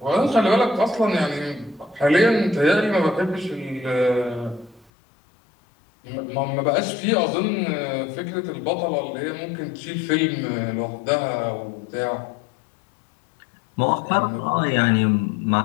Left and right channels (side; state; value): right; drops out; at 4.9 s